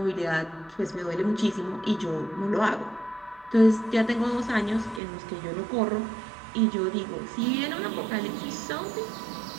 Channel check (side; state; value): left; drops out; at 5.0 s